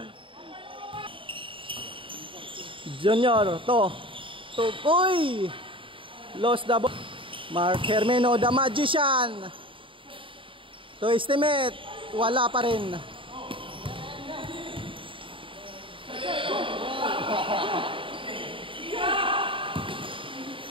Junior, to. Uy. Lost the ball. Mark Hermeno, the Magician. To estimate, wala pa rin.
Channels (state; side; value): late; left; 0.25 ms